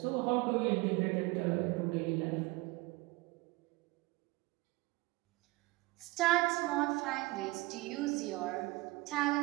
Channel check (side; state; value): left; quieter; 22.1 dB